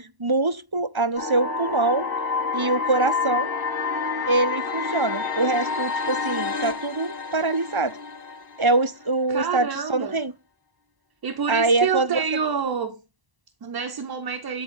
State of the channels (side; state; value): left; late; 1.0 ms